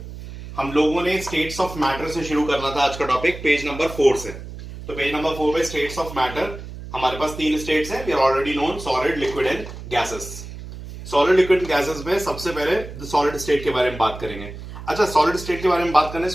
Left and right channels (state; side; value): noise; right; hum, 12 dB below the sound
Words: हम लोगों ने states of matter से शुरू करना था आज का टॉपिक पेज नंबर 4 से। तो पेज नंबर 4 पे स्टेट्स ऑफ मैटर हमारे पास 3 स्टेट्स हैं। We are already known solid, liquid and gases. Solid, liquid and gases में सबसे पहले सॉलिड स्टेट के बारे में बात करेंगे। अच्छा, सॉलिड स्टेट के बारे में बात करने